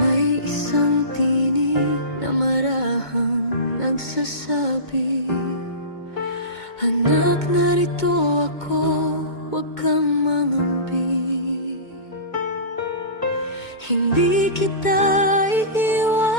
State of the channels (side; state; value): right; late; 2.2 ms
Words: isang tinig na marahang nagsasabi, anak, narito ako, huwag kang mangambi. Hindi kita